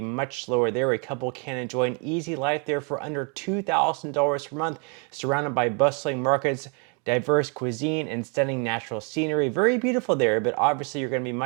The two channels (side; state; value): left; quieter; 36.2 dB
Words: much lower there. A couple can enjoy an easy life there for under $2,000 per month, surrounded by bustling markets, diverse cuisine, and stunning natural scenery. Very beautiful there, but obviously you're going to be